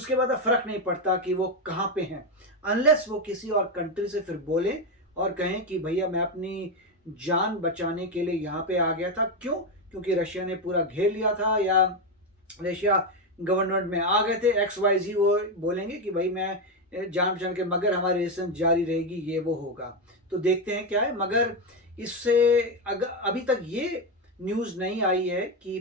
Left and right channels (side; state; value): both; normal; correlation 0.09